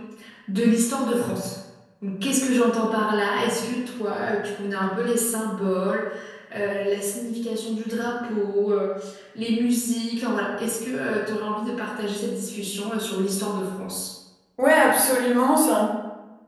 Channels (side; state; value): both; identical; correlation 1.00